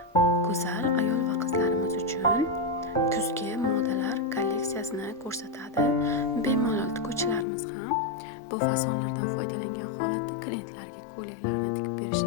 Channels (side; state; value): right; drops out; at 7.5 s